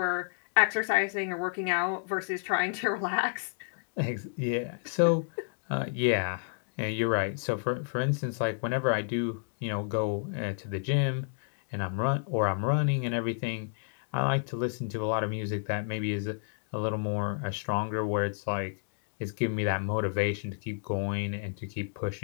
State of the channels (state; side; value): silent; right; digital silence